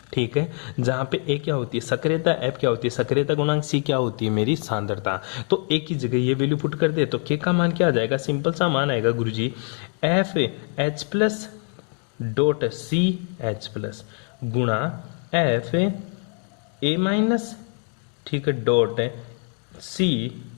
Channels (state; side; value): quieter; right; 39.8 dB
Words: ठीक है। जहां पे ए क्या होती है सक्रियता, एफ क्या होती है सक्रियता गुणांक, सी क्या होती है मेरी सांद्रता। तो ए की जगह ये वैल्यू पुट कर दे तो के का मान क्या आ जाएगा, सिंपल सा मान आएगा guruji, F H plus dot C H plus गुणा एफ ए माइनस, ठीक है, डॉट सी